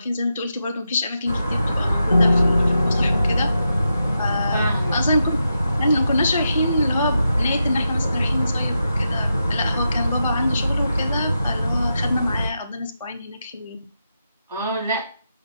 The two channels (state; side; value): inverted; both; correlation -0.87